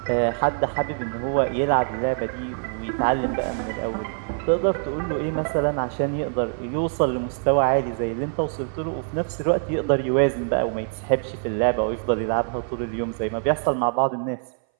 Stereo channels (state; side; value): silent; left; 60 dB below the other